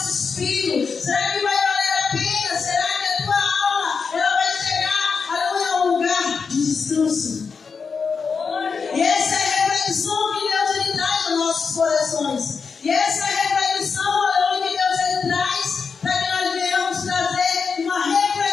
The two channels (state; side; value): quieter; right; 5.4 dB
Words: Será que vai valer a pena? Será que a tua alma ela vai chegar, aleluia, a um lugar de descanso? E essa é a reflexão que Deus ele traz nos nossos corações. E essa é a reflexão, aleluia, que Deus ele traz para que nós venhamos trazer uma